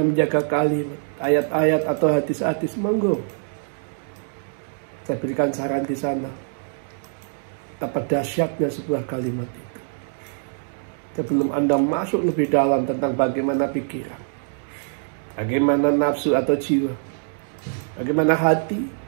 menjaga kalimat, ayat-ayat atau hadis-hadis, monggo. Saya berikan saran di sana. Betapa dahsyatnya sebuah kalimat itu. Sebelum Anda masuk lebih dalam tentang bagaimana pikiran, bagaimana nafsu atau jiwa, bagaimana hati,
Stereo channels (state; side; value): silent; left; digital silence